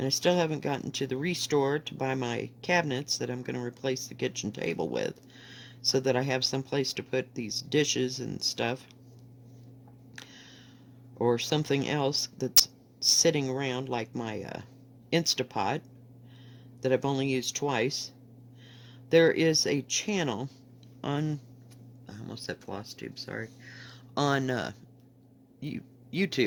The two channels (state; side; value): identical; both; correlation 1.00